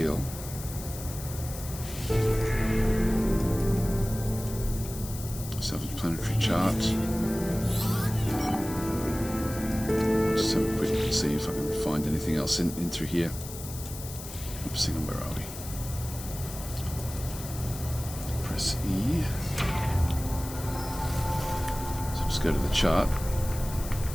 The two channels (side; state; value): left; noise; hiss, 12 dB below the sound